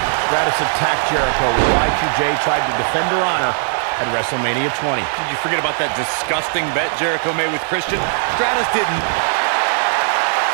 Stratus attacked Jericho when Y2J tried to defend her honor at Wrestlemania 20. Did you forget about that disgusting bet Jericho made with Christian? Stratus didn't.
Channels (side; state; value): left; silent; digital silence